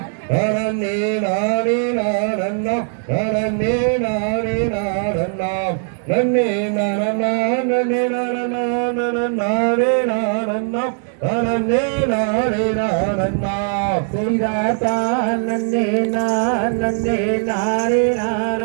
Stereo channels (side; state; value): left; silent; 58 dB below the other